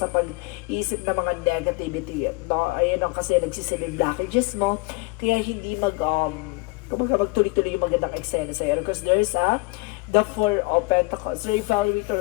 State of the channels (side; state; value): right; quieter; 25.1 dB